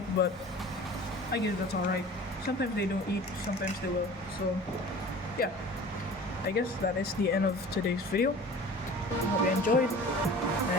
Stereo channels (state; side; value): normal; both; correlation 0.42